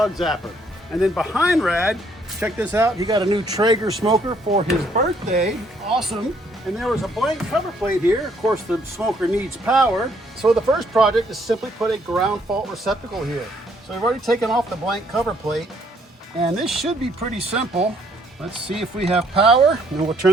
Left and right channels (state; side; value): normal; both; correlation 0.67